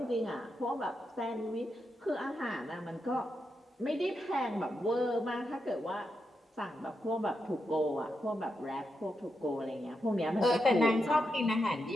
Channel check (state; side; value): normal; both; correlation 0.85